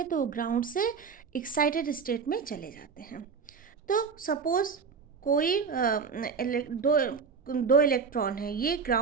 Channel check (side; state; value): left; quieter; 5.6 dB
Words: तो वो ग्राउंड से एक्साइटेड स्टेट में चले जाते हैं। तो सपोज कोई दो इलेक्ट्रॉन है, ये